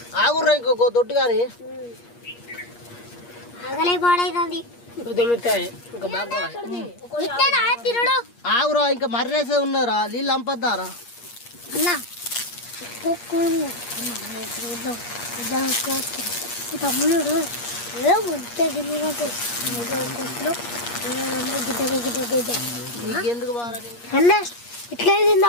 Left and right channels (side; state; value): right; late; 8.5 ms